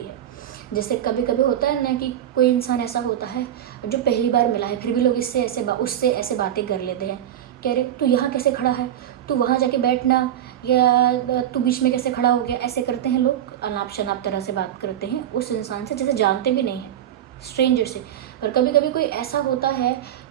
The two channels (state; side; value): quieter; left; 11.0 dB